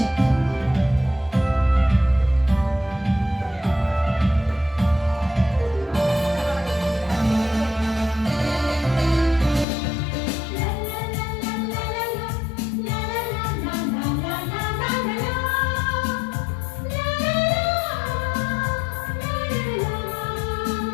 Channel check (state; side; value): drops out; right; at 9.7 s